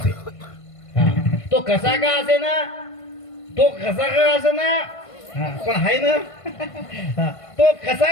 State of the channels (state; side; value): late; right; 1.5 ms